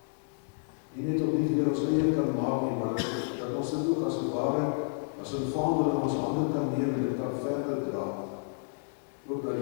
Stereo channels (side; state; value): right; silent; digital silence